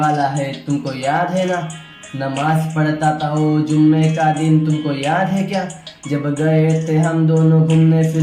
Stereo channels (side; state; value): both; identical; correlation 1.00